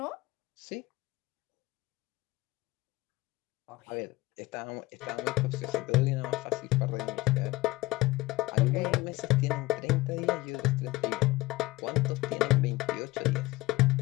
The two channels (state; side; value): quieter; right; 19.5 dB